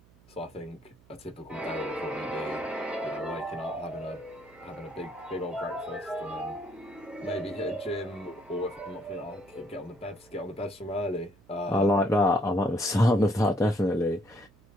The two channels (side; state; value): right; noise; hum, 27 dB below the sound